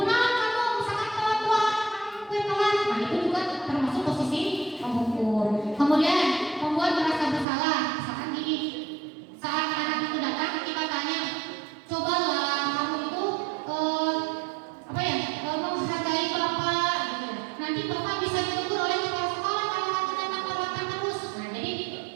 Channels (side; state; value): left; drops out; at 7.5 s